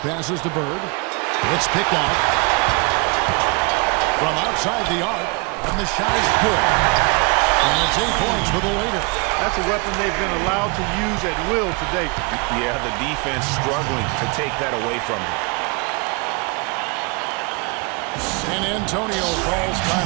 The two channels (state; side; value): quieter; left; 30.9 dB